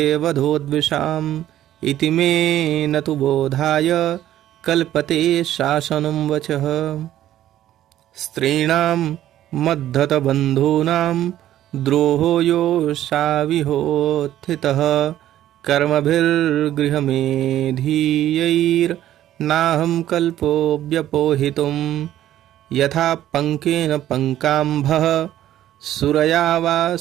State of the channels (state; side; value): quieter; left; 12.6 dB